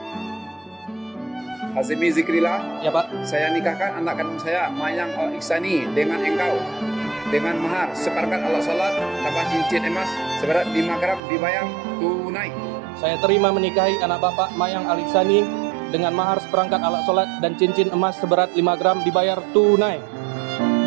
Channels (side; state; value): left; drops out; at 11.2 s